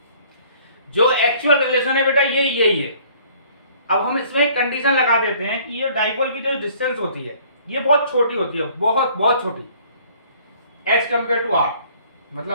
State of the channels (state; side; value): inverted; both; correlation -0.56